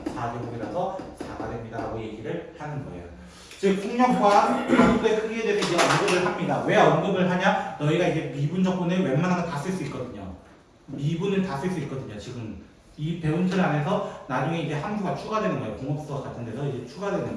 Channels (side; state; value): both; identical; correlation 1.00